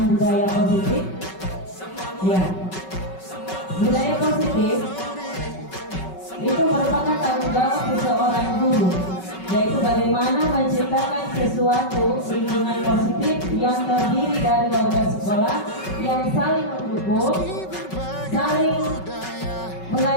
budaya positif. Ya, budaya positif itu merupakan tanggung jawab seseorang guru, yaitu bagaimana menciptakan sesuatu lingkungan positif yang terdiri dari warga sekolah yang saling mendukung, saling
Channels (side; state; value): right; late; 5.3 ms